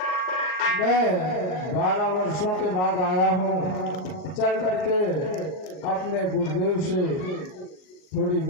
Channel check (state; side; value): late; right; 38 ms